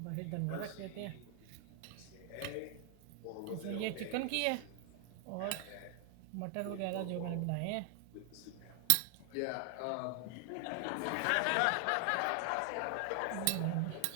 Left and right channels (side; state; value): both; different; correlation 0.00